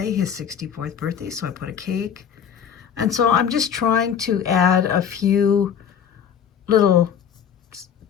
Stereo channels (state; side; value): quieter; right; 8.1 dB